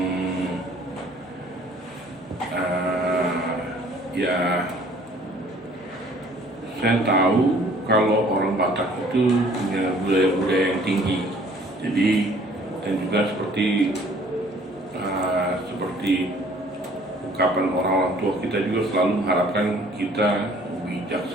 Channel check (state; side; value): normal; both; correlation 0.56